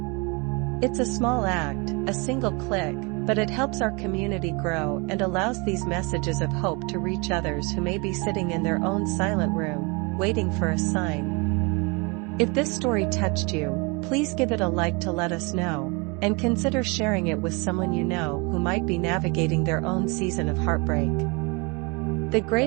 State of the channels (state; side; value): quieter; left; 29.6 dB